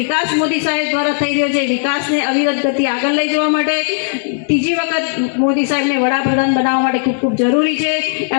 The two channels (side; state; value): right; silent; 69 dB below the other